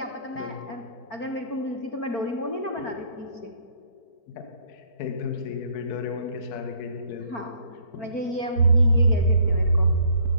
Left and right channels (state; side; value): late; right; 4.5 ms